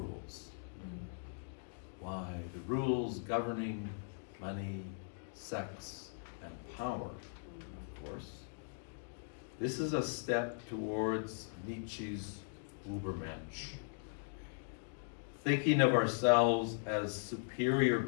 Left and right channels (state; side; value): silent; right; digital silence